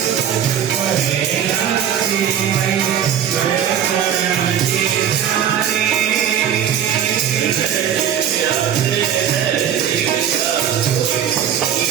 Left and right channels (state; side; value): quieter; left; 9.2 dB